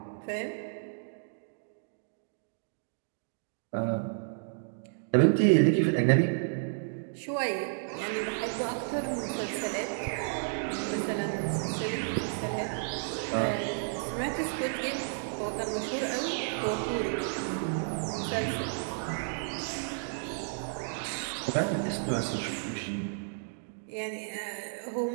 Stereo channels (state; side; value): silent; left; digital silence